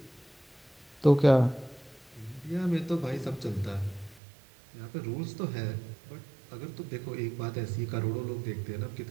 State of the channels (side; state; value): left; drops out; at 4.2 s